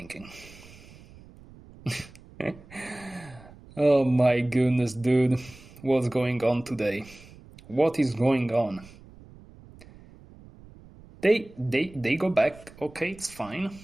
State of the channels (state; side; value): noise; right; rumble, 21 dB below the sound